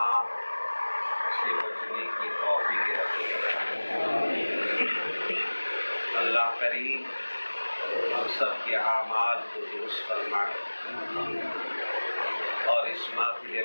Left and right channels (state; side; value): inverted; both; correlation -1.00